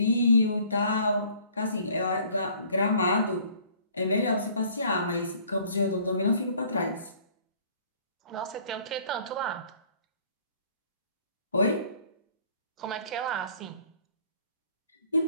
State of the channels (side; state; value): both; inverted; correlation -0.56